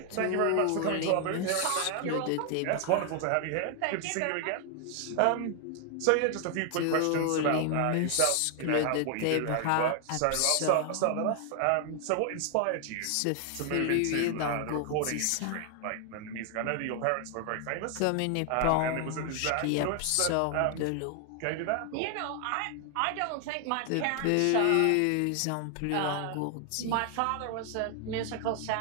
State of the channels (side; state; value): both; different; correlation 0.00